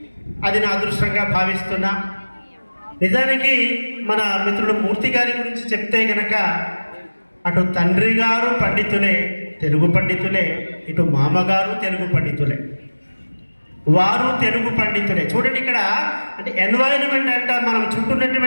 అది నా అదృష్టంగా భావిస్తున్నా. నిజానికి మన మిత్రుడు మూర్తి గారి గురించి చెప్తే గనక అటు తండ్రి గారు పండితులే, తెలుగు పండితులే, ఇటు మామగారు తెలుగు పండితులే, వారు తెలుగు పండితులే. చూడండి ఇక్కడ అంటే ఎన్వైరన్మెంట్ అంట మనం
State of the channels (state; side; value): inverted; both; correlation -1.00